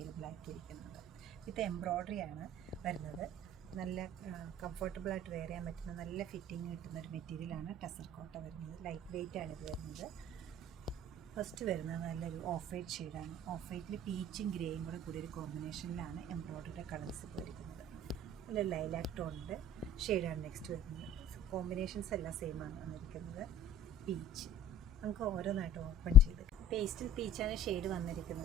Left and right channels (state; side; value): normal; both; correlation 0.46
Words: ആക്കിയിരിക്കുന്നത്. ഇത് എംബ്രോയ്ഡറി ആണ് വരുന്നത്. നല്ല കംഫർട്ടബിളായിട്ട് വെയർ ചെയ്യാൻ പറ്റുന്ന നല്ല ഫിറ്റിംഗ് കിട്ടുന്ന ഒരു മെറ്റീരിയലാണ് ടെസർ കോട്ട വരുന്നത്. ലൈറ്റ് വെയ്റ്റ് ആണ് ഇത് വരുന്നത്. ഫസ്റ്റ് വരുന്നത് നല്ലൊരു ഓഫ് വൈറ്റ് ഷെയ്ഡാണ്. ഓഫ് വൈറ്റിൽ പീച്ചും ഗ്രേയും കൂടെ കൂടി ഒരു കോമ്പിനേഷനിലാണ് എംബ്രോയ്ഡറിയുടെ കളേഴ്സ് പോയിരിക്കുന്നത്. നല്ല ലൈലാക്ക് ടോണിൻ്റെ ഷെയ്ഡാണ് നെക്സ്റ്റ് വരുന്നത്. കോമ്പിനേഷൻസ് എല്ലാം സെയിം ആണ് വന്നിരിക്കുന്നത്. പീച്ച് നമുക്ക് ഓരോന്നായിട്ട് ഓപ്പൺ ചെയ്ത് പേസ്റ്റൽ പീച്ചാണ് ഷെയ്ഡ്